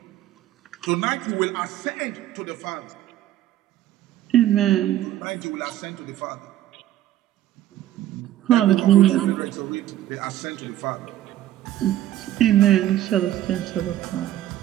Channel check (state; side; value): quieter; left; 13.1 dB